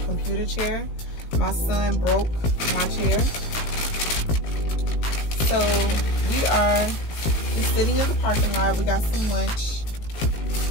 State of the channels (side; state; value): right; late; 18 ms